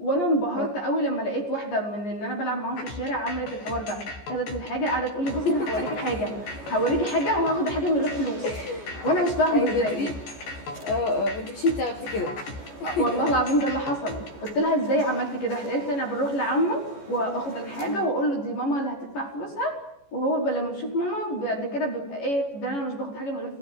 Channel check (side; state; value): right; late; 14 ms